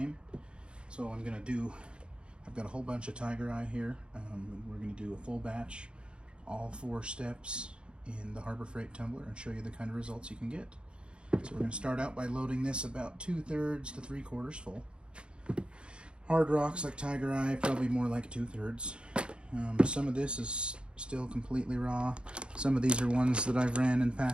So I've got a whole bunch of Tiger Eye here. We're going to do a full batch, all 4 steps in the Harbor Freight Tumbler and show you the kind of results you can get. So we're going to start out by loading this about 2/3 to 3/4 full. Hard rocks like Tiger Eye, probably more like 2/3. Some of this is still completely raw. Some of these are ones that I've ran in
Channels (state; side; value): late; left; 0.055 ms